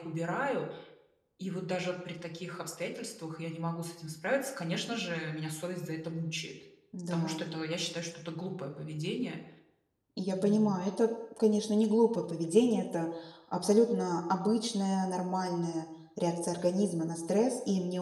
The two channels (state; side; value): identical; both; correlation 1.00